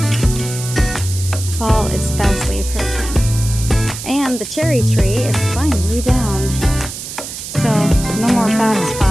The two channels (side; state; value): right; noise; hiss, 9 dB below the sound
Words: Fall is fastly approaching. And the cherry tree is finally down. So, no more bad